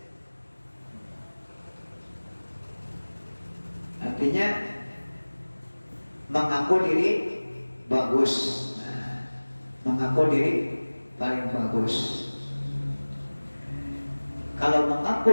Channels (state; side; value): inverted; both; correlation -1.00